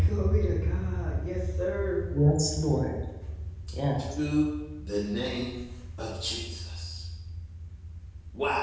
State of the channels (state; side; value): identical; both; correlation 1.00